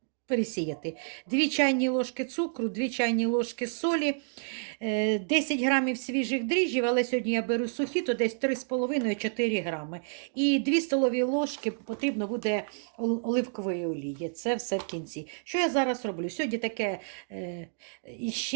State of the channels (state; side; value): silent; left; digital silence